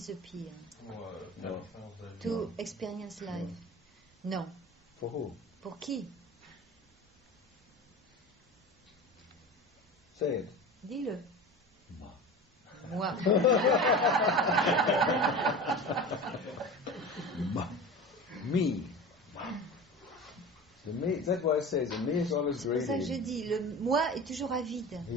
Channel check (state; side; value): normal; both; correlation 0.33